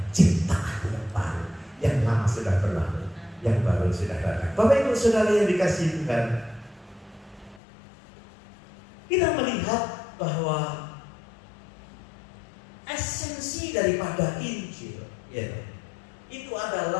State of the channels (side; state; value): right; drops out; at 7.6 s